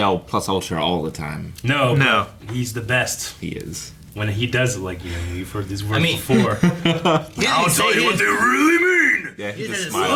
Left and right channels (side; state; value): both; identical; correlation 1.00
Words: plus ultra all the time. No. No. but he's the best He is. when he does it. Like you've heard these words mean- before. I'll tell you what they really mean. Yeah, He just